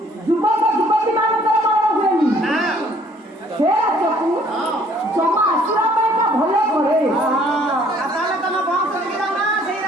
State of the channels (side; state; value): both; normal; correlation 0.60